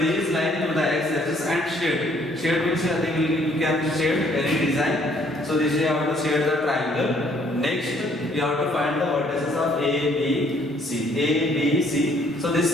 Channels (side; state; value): both; normal; correlation 0.63